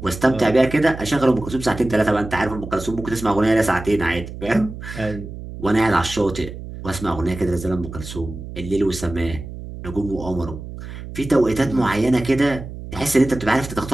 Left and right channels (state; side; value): noise; right; hum, 11 dB below the sound